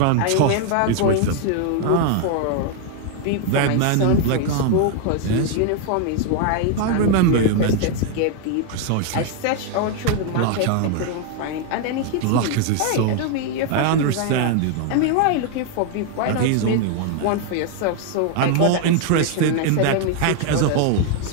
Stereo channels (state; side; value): different; both; correlation 0.00